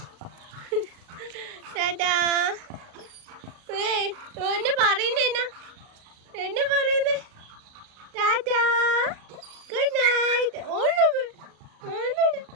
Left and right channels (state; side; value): late; left; 38 ms